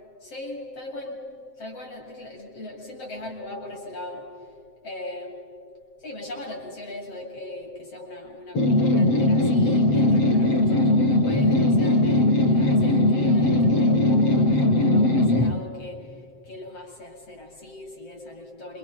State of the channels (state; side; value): late; right; 7.7 ms